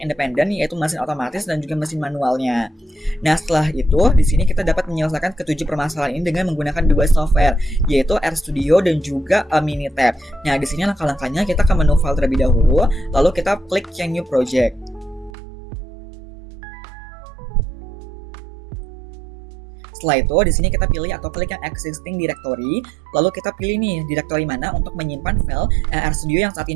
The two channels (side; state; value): left; drops out; at 15.3 s